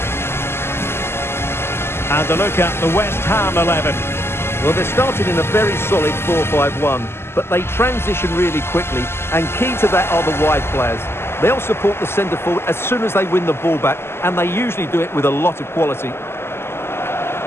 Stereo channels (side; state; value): right; late; 0.12 ms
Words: And a look at the West Ham 11. Well, they started in a very solid 4-5-1, but they transition really quickly, and key to that are the wide players. They'll support the centre forward as soon as they win the ball back, and they usually do it with a lot of quality.